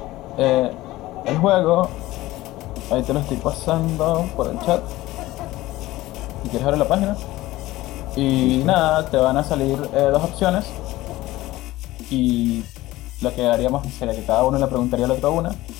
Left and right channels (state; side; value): quieter; right; 17.4 dB